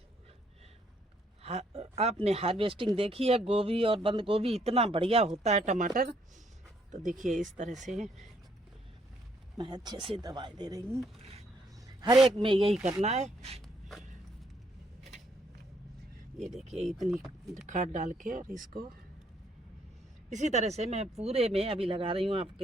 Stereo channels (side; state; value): both; normal; correlation 0.70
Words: आपने हार्वेस्टिंग देखी है गोभी और बंद गोभी, इतना बढ़िया होता है टमाटर। तो देखिए इस तरह से मैं अच्छे से दवाई दे रही हूँ, हर एक में यही करना है। ये देखिए इतनी खाद डाल के, और इसको इसी तरह से मैं पूरे में अभी लगा रही हूँ आपके